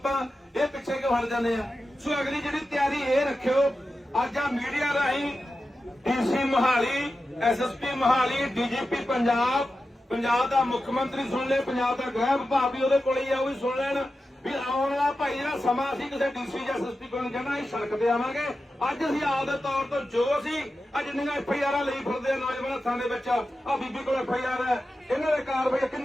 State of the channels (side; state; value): both; normal; correlation 0.92